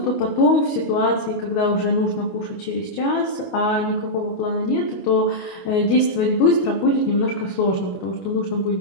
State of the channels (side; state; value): right; late; 21 ms